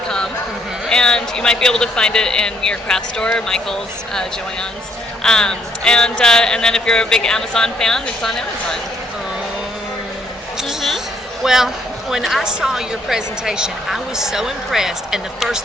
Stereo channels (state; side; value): normal; both; correlation 0.68